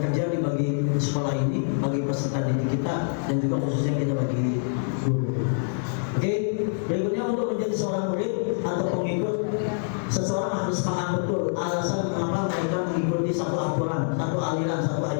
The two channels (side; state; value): right; silent; digital silence